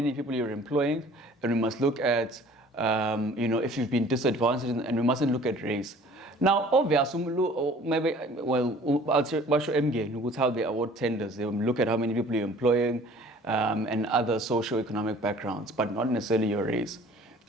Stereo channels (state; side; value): normal; both; correlation 0.50